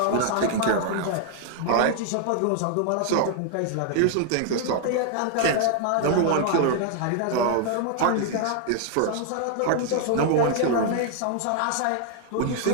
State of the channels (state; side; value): different; both; correlation 0.00